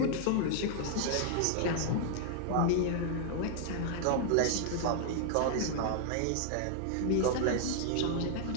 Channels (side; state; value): both; different; correlation -0.01